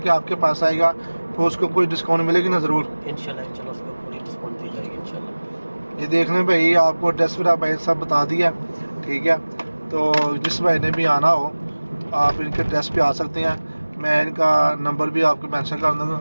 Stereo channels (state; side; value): inverted; both; correlation -1.00